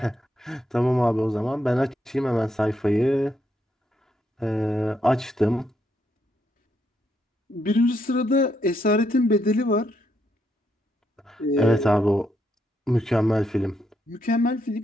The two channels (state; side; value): normal; both; correlation 0.77